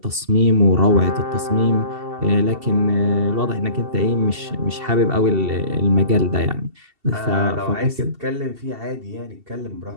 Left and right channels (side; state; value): left; late; 2.7 ms